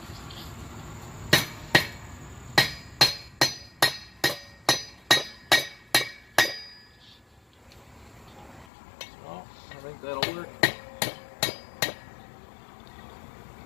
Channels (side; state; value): right; drops out; at 8.7 s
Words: I think that'll work.